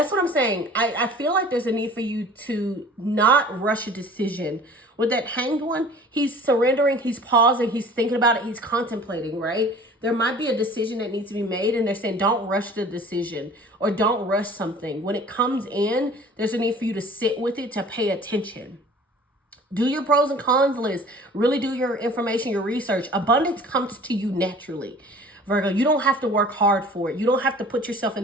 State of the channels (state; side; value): normal; both; correlation 0.46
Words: what I'm saying. I feel like there's a need for you to not rush a decision. With that Hanged One, he's surrendering, he's pausing, he's thinking about it, he's contemplating, right? There might be a decision that needs to be made, and they're saying don't rush the decision or don't rush something. When it comes in, there's a need for you to sit with it, to pay attention. Do your pros and cons list. Really do your information, your research. Abundance comes to you naturally. Virgo, you don't have to work hard for it. You don't have to put yourself in